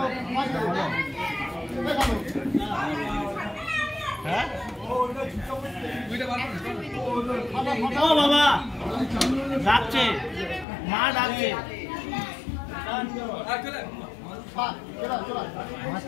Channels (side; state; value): right; drops out; at 10.7 s